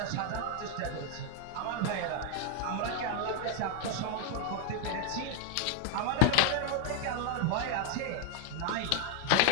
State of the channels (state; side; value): different; both; correlation 0.00